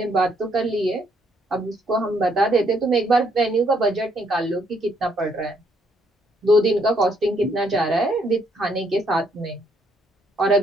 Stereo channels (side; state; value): both; normal; correlation 0.70